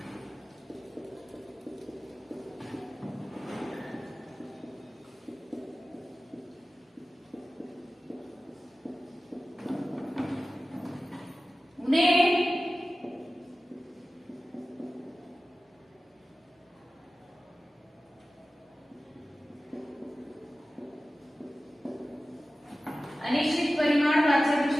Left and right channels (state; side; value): normal; both; correlation 0.96